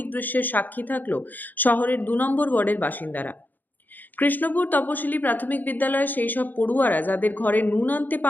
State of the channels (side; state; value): right; late; 0.086 ms